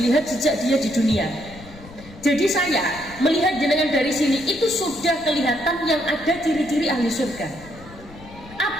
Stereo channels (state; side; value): noise; left; rumble, 19 dB below the sound